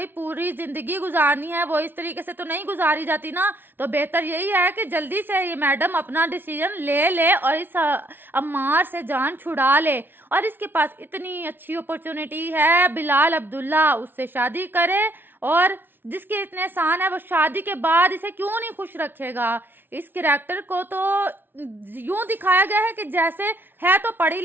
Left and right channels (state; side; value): late; left; 0.098 ms